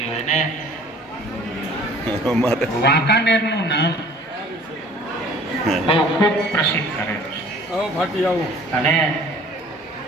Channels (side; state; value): both; normal; correlation 0.50